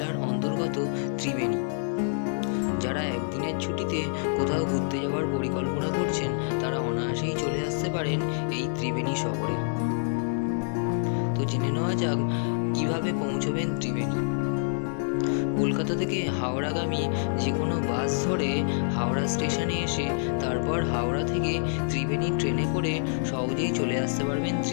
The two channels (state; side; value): silent; right; digital silence